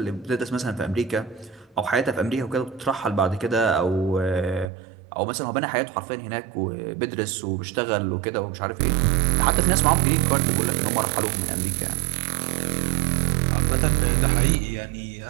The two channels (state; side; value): drops out; left; at 4.7 s